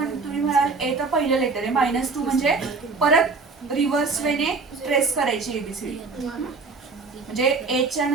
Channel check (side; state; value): left; quieter; 4.2 dB